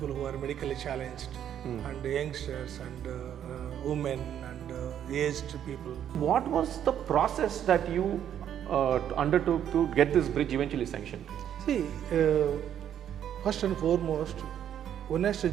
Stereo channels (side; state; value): left; quieter; 9.9 dB